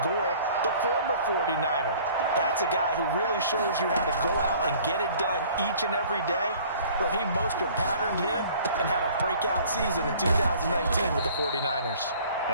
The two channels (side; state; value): both; inverted; correlation -0.52